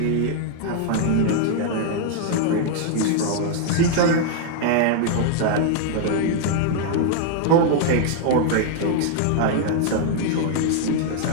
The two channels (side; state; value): both; different; correlation 0.00